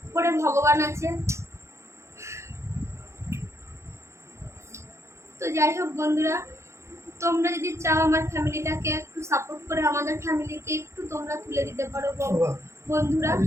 উপরে ভগবান আছে। তো যাই হোক বন্ধুরা, তোমরা যদি চাও আমার ফ্যামিলিটাকে একটু সাপোর্ট করে আমাদের ফ্যামিলিকে একটু তোমরা তুলে দিতে পারো বন্ধুরা।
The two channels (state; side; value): late; left; 0.14 ms